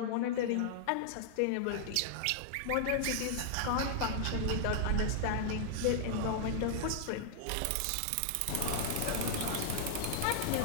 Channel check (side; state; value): both; different; correlation -0.01